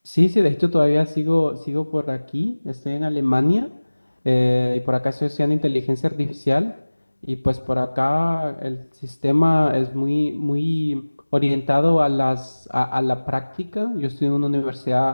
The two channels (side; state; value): both; inverted; correlation -1.00